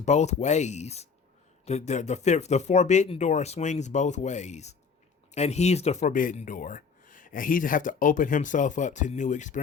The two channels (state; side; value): quieter; right; 5.6 dB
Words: both ways. The Forbidden Door swings both ways. And he's the Forbidden Door. And he'd have to open himself up to new